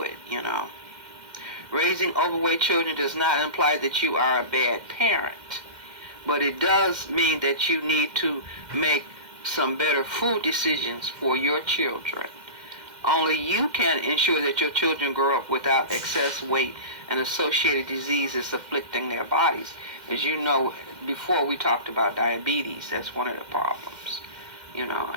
it, Raising overweight children does not imply that you are a bad parent, but it does mean that you need to make some better food decisions for your children. Only you can ensure that your children grow up without excess weight and associated diseases afflicting their bodies. As you know, before we talked about diabetes, that's one of the problems, and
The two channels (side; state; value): left; late; 2.1 ms